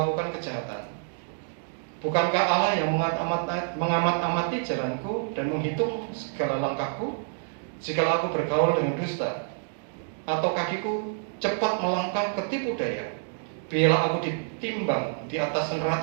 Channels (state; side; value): silent; left; digital silence